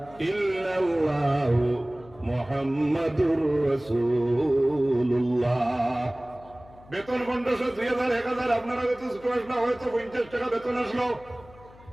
ইল্লাল্লাহু মুহাম্মাদুর রাসূলুল্লাহ। বেতন 1500, 2000, 1000, আপনারা বেতন ছোট আসলো, হয়তো 50 টাকা বেতন আসলো।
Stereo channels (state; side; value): noise; left; hum, 23 dB below the sound